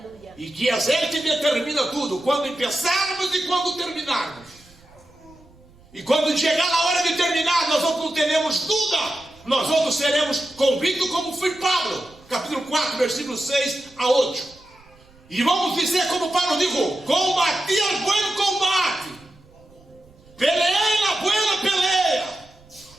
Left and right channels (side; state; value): right; noise; rumble, 27 dB below the sound